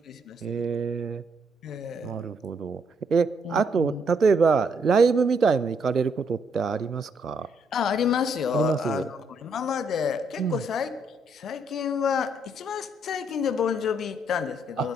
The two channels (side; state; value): both; normal; correlation 0.73